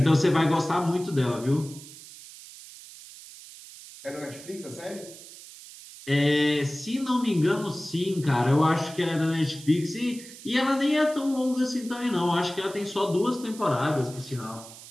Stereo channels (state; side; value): noise; right; hiss, 17 dB below the sound